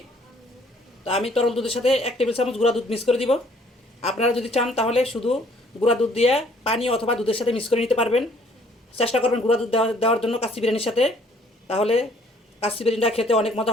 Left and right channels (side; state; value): both; normal; correlation 0.60